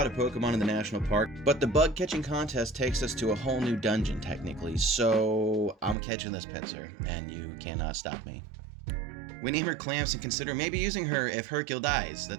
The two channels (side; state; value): left; drops out; at 6.0 s